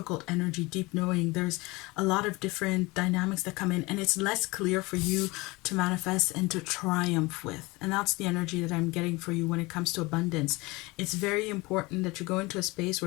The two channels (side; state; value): right; quieter; 23.4 dB